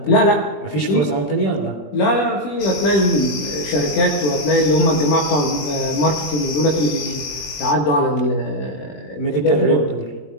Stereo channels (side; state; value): right; late; 21 ms